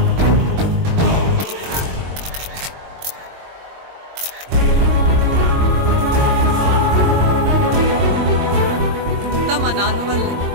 మా నాన్న వల్లే.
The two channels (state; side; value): late; left; 22 ms